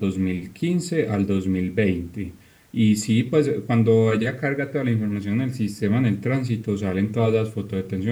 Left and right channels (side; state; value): both; identical; correlation 1.00